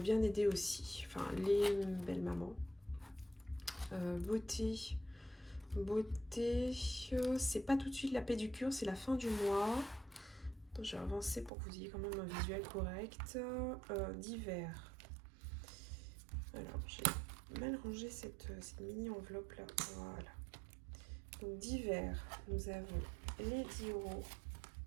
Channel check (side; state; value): left; drops out; at 11.5 s